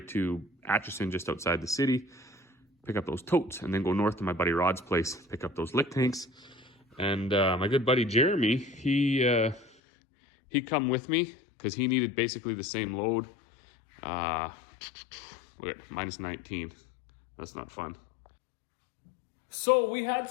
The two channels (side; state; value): right; drops out; at 9.7 s